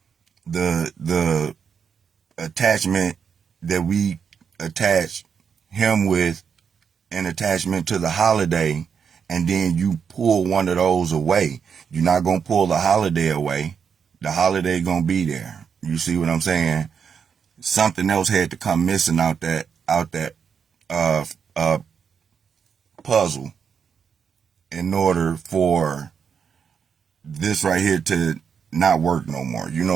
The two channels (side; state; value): left; quieter; 6.8 dB